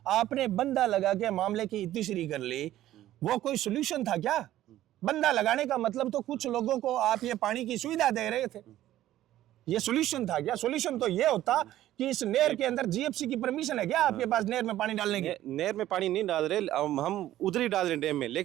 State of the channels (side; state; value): left; quieter; 13.7 dB